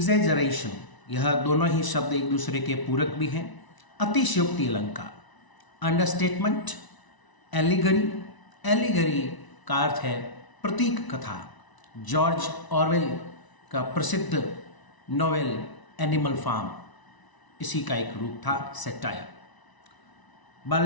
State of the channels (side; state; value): right; late; 1.0 ms